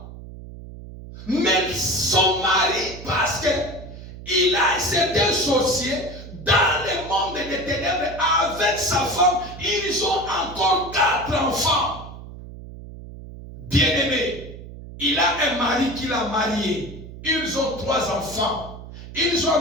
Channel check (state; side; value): noise; right; hum, 14 dB below the sound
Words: Mais son mari, parce qu'il a été associé dans le monde des ténèbres avec sa femme, ils ont encore 4 enfants. Bien-aimés, il a un mari qu'il a marié. Ils ont 3 enfants. Ils ont